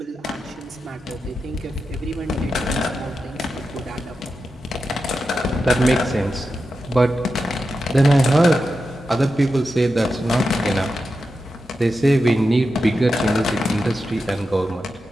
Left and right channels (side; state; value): both; normal; correlation 0.89